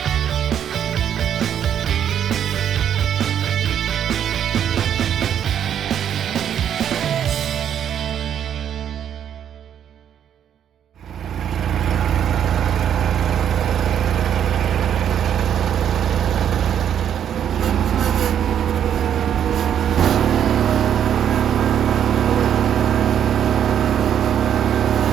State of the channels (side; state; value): left; quieter; 9.4 dB